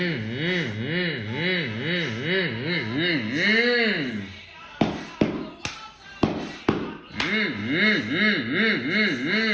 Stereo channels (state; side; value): identical; both; correlation 1.00